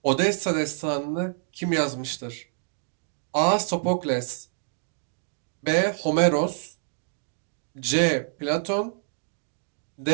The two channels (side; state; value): left; silent; digital silence